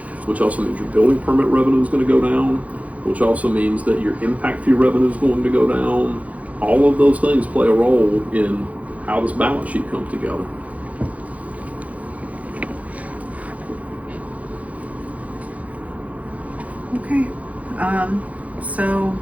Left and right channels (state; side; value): late; left; 0.069 ms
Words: Which also means your building permit revenue is going to go down, which also means that your impact fee revenue is going to go down. All of those things play a role in how this balance sheet comes together. Okay, so